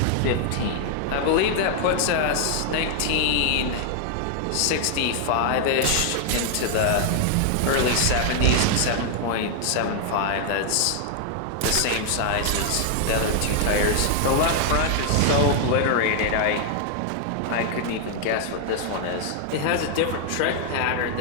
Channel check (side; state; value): both; different; correlation 0.00